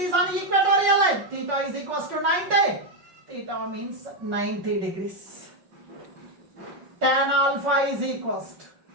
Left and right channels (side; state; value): left; late; 5.5 ms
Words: on equatorial line. Theta is equals to 90. Theta means 90 degrees. Tan alpha is equals to